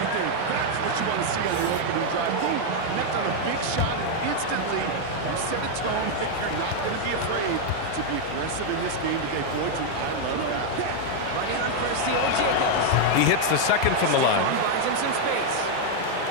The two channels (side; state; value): both; different; correlation 0.00